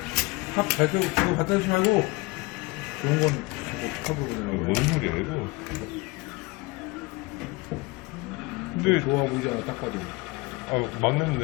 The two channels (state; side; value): quieter; right; 24.0 dB